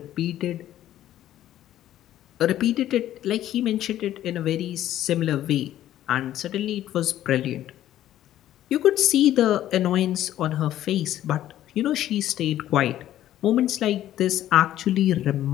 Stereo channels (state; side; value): quieter; right; 12.7 dB